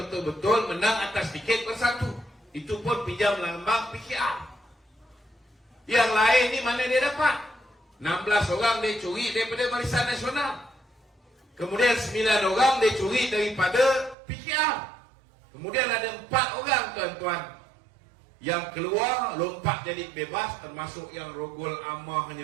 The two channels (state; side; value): drops out; left; at 14.2 s